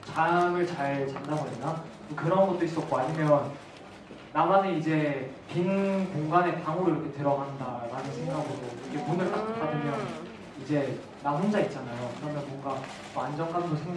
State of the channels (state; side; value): identical; both; correlation 1.00